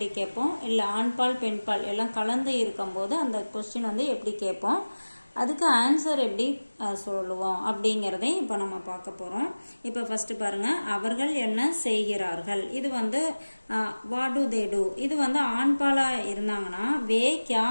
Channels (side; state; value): both; inverted; correlation -1.00